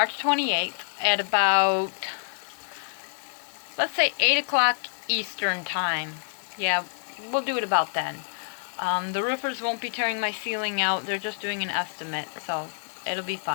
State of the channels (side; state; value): right; silent; digital silence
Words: 28th, at about, let's say 8 o'clock Eastern time. Yeah, we'll do it about then. The roofers won't be tearing my ceiling out. They're just doing an estimate, so it'll be